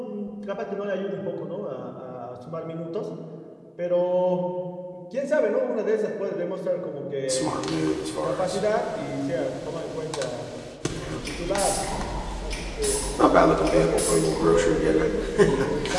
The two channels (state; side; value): identical; both; correlation 1.00